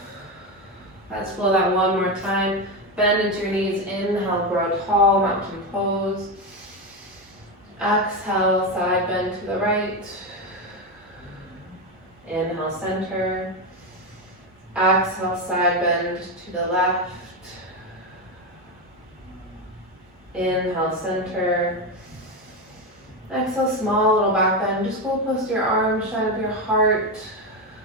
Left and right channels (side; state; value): both; normal; correlation 0.13